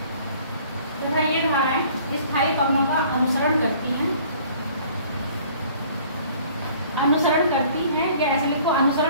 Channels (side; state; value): both; inverted; correlation -0.54